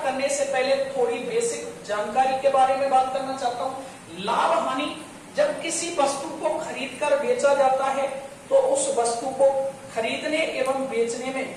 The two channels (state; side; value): identical; both; correlation 1.00